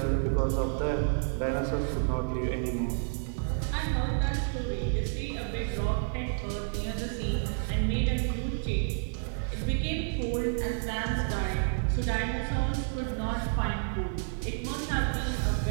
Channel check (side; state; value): left; silent; digital silence